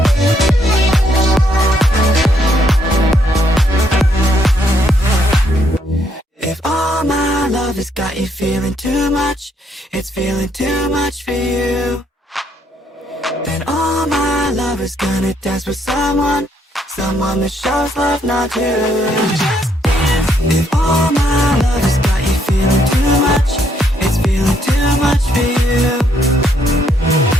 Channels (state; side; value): normal; both; correlation 0.72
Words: If all my love has got you feeling too much, it's feeling too much for you, then all my love is gonna dance with someone that shows love, not you. If all my love has got you feeling too much, it's feeling too much for you,